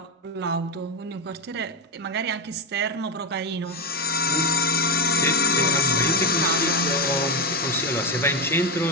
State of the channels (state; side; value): normal; both; correlation 0.12